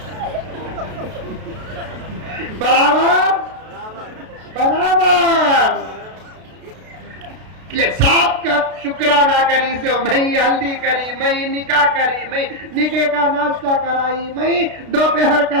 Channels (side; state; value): left; late; 33 ms